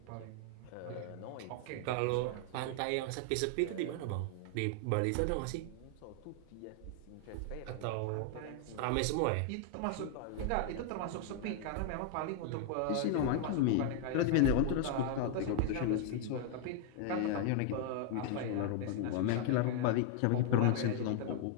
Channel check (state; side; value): different; both; correlation 0.00